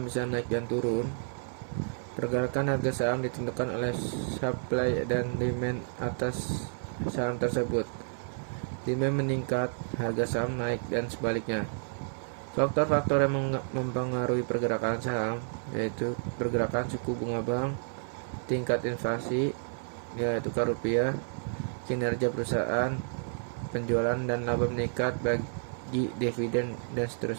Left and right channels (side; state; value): left; silent; 56 dB below the other